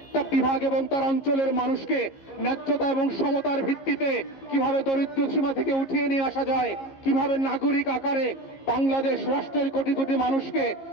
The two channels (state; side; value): late; right; 15 ms